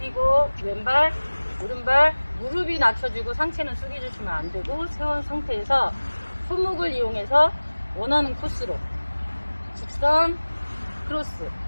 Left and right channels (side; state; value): both; inverted; correlation -1.00